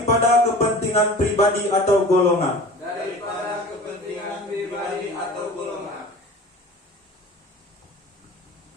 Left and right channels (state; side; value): normal; both; correlation 0.40